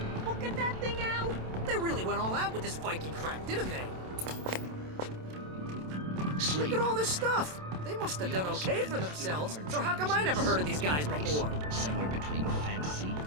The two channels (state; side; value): late; left; 27 ms